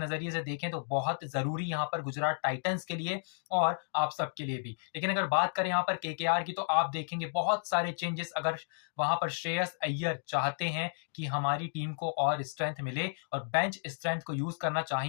से देखें तो बहुत जरूरी यहां पर गुजरात टाइटंस के लिए और आप सबके लिए भी। लेकिन अगर बात करें यहां पर केकेआर की, तो आप देखेंगे बहुत सारे चेंजेस। अगर वहां पर श्रेयस अय्यर चाहते हैं कि हमारी टीम को और स्ट्रेंथ मिले और बेंच स्ट्रेंथ को यूज करना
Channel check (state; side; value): silent; right; digital silence